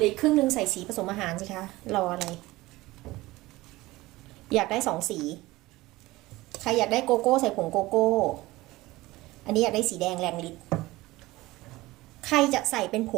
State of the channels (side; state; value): left; quieter; 19.2 dB